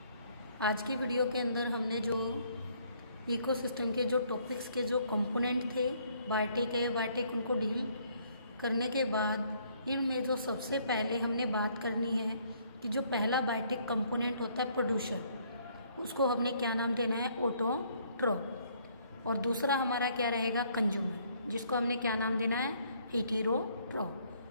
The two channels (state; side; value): inverted; both; correlation -0.65